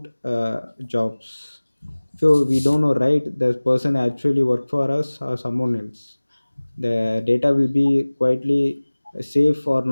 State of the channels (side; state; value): both; inverted; correlation -1.00